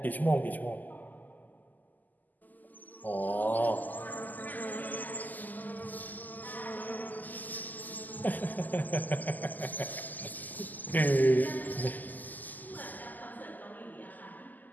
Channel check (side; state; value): right; late; 0.084 ms